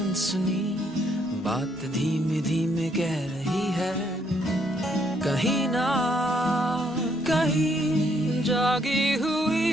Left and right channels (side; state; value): both; normal; correlation 0.70